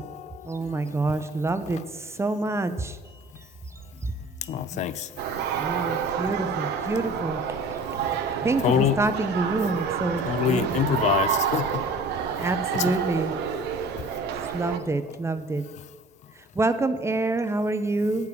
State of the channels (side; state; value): both; normal; correlation 0.48